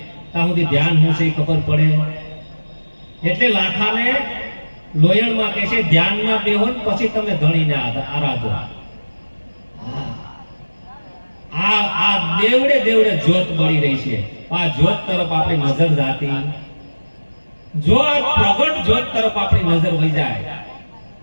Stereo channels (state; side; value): inverted; both; correlation -1.00